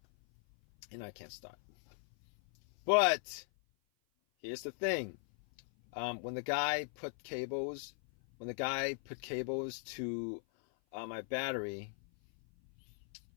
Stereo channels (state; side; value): silent; right; 52 dB below the other